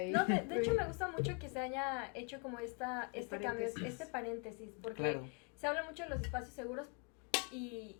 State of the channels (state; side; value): quieter; right; 34.9 dB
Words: No, de hecho me gusta mucho que se haya hecho como este cambio, este paréntesis, porque se habla mucho de los espacios seguros. Y